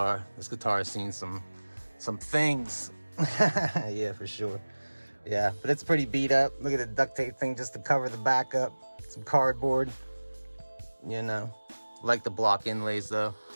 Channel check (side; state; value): both; inverted; correlation -1.00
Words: This guitar has seen some things. Yeah, for sure. Yeah, but it's pretty beat up. Look at the duct tape thing just to cover the back up. Some cardboard. You know, like the block inlays though.